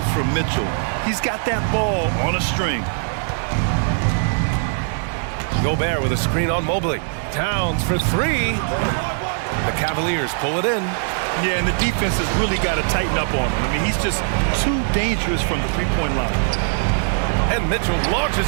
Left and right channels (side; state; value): left; silent; digital silence